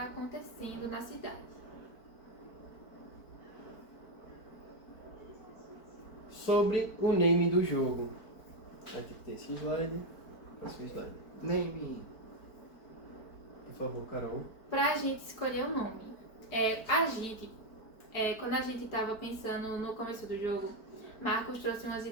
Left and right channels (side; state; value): right; late; 4.5 ms